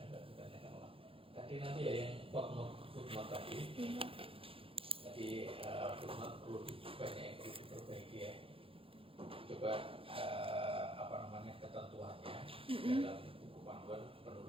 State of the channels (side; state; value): left; late; 0.27 ms